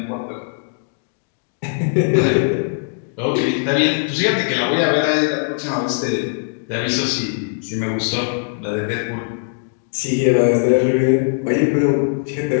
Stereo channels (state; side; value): silent; right; digital silence